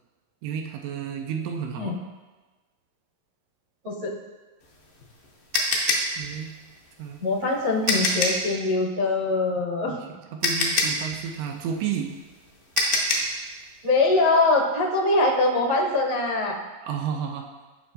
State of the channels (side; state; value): left; late; 11 ms